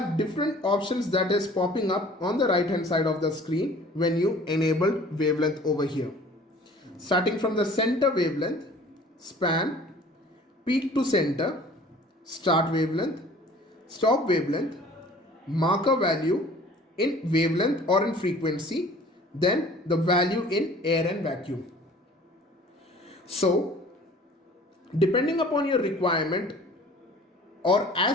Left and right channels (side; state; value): both; normal; correlation 0.49